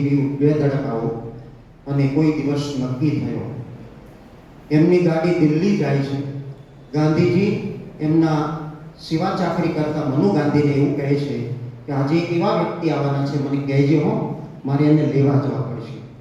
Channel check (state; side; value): identical; both; correlation 1.00